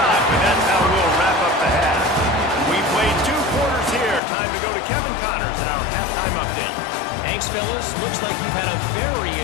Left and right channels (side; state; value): right; drops out; at 4.2 s